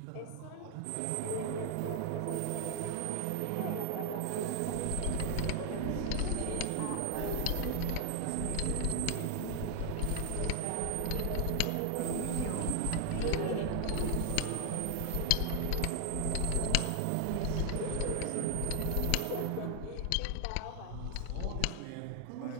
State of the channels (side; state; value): both; different; correlation 0.00